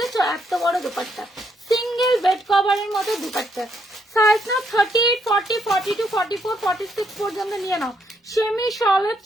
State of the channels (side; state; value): both; normal; correlation 0.74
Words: এত বড় দুপাট্টা, সিঙ্গেল বেড কভারের মতো দুপাট্টা, সাইজ নাও 38, 40, 42, 44, 46 পর্যন্ত নিয়ে নাও। সেমি শলের